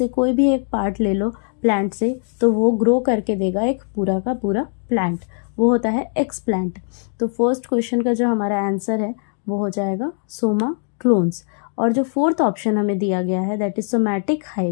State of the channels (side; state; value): right; silent; 56 dB below the other